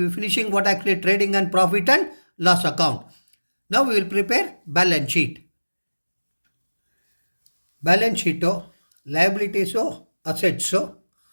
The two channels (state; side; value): inverted; both; correlation -1.00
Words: be finishing what actually trading and profit and loss account. Now we will prepare balance sheet. Balance sheet, liabilities, assets,